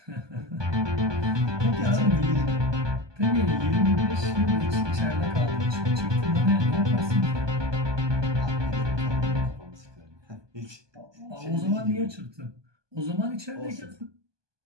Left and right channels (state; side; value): late; left; 1.2 ms